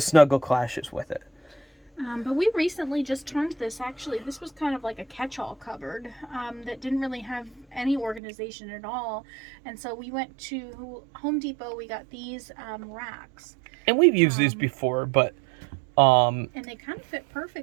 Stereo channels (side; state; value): left; drops out; at 8.2 s